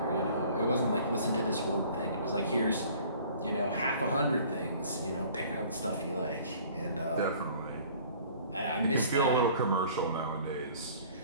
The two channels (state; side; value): inverted; both; correlation -0.51